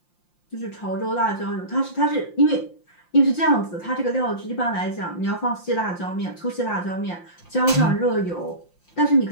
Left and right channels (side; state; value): right; late; 5.7 ms